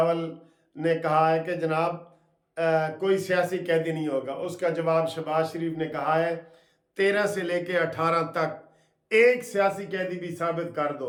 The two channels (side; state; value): both; identical; correlation 1.00